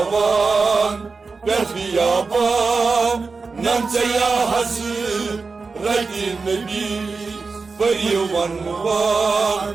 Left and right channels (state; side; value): quieter; left; 4.4 dB